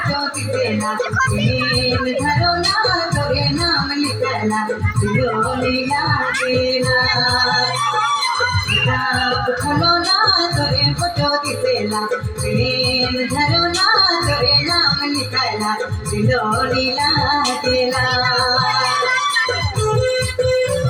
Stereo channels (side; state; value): both; identical; correlation 1.00